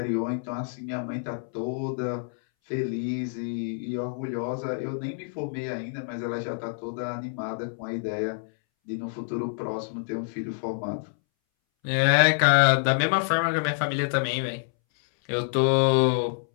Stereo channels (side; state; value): right; silent; 60 dB below the other